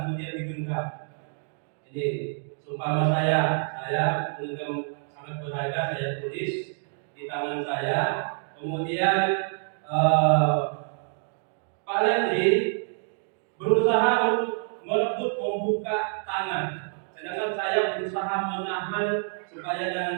kemudian digenggam. Jadi seumpama saya menggenggam sangat berharga, saya tulis di tangan saya. Kemudian Pak Lendri berusaha untuk merebut membuka tangan, sedangkan saya berusaha menahan supaya jangan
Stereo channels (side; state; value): left; silent; 60 dB below the other